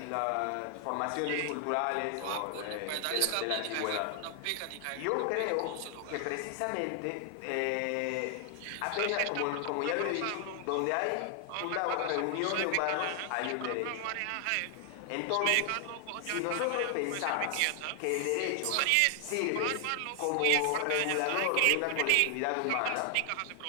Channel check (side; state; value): both; different; correlation 0.00